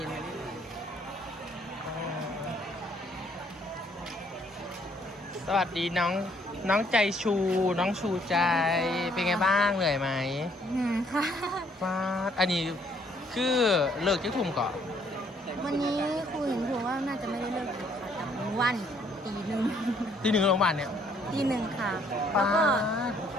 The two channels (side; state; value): both; normal; correlation 0.66